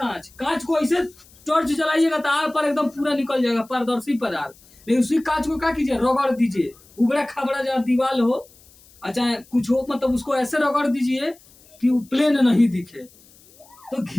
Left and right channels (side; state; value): left; noise; hiss, 27 dB below the sound